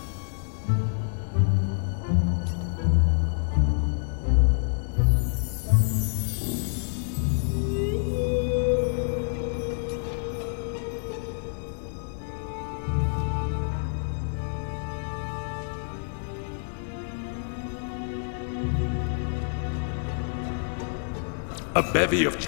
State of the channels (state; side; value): silent; right; 59 dB below the other